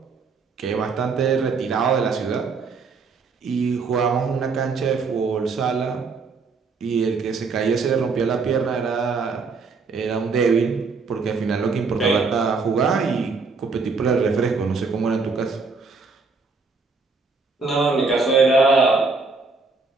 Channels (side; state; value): left; quieter; 4.5 dB